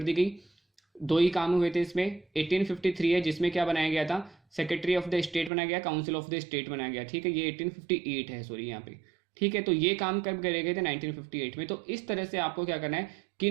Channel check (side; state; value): left; drops out; at 5.5 s